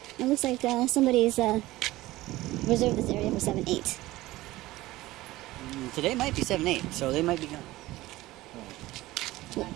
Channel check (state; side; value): quieter; left; 17.7 dB